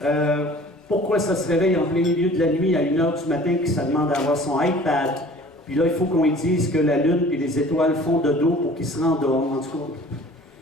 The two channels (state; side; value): normal; both; correlation 0.48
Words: Pourquoi ça se réveille en plein milieu de la nuit à 1h du matin et que ça demande d'avoir son iPad? Puis là, il faut qu'on lui dise que la lune et les étoiles font de dos pour qu'il se rendorme, en tout